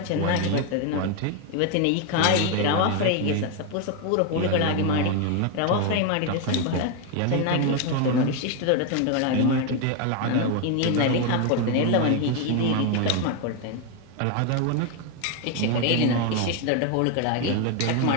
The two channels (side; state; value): both; different; correlation 0.01